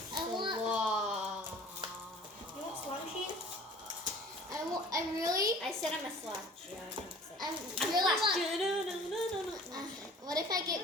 want You want Slot Machine? I said I'm a slot. Yeah, what if I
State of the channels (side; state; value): both; normal; correlation 0.47